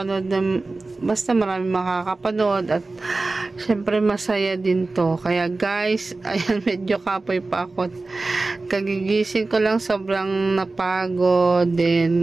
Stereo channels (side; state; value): left; quieter; 3.4 dB